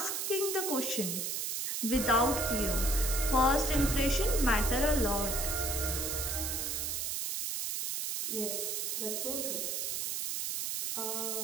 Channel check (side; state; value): right; noise; hiss, 1 dB below the sound